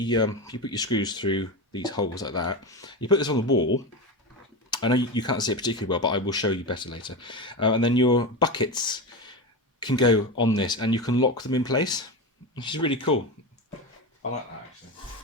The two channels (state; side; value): normal; both; correlation 0.20